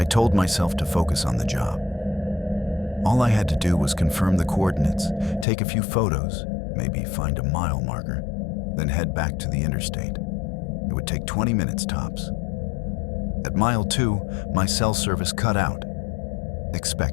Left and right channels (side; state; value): right; drops out; at 5.5 s